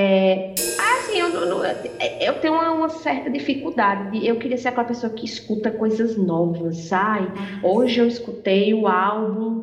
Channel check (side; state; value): both; identical; correlation 1.00